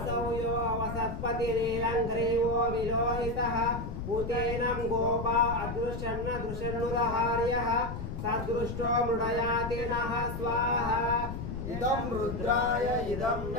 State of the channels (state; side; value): noise; left; rumble, 6 dB below the sound